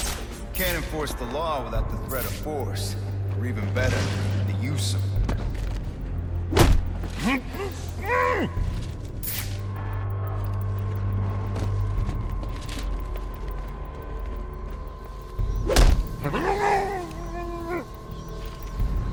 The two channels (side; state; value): both; identical; correlation 1.00